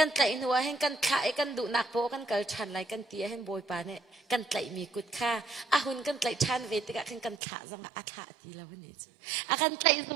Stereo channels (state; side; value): drops out; left; at 7.4 s